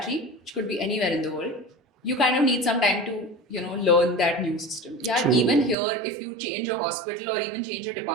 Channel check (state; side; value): drops out; left; at 5.8 s